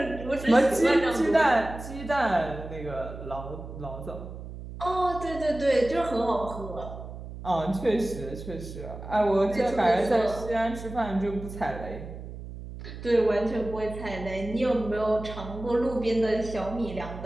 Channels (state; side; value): noise; right; hum, 11 dB below the sound